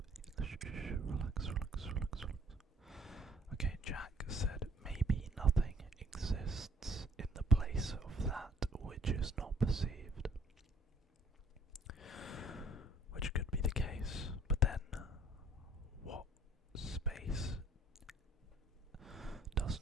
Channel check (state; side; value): normal; both; correlation 0.61